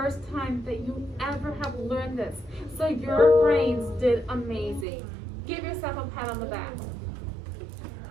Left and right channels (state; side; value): drops out; left; at 4.9 s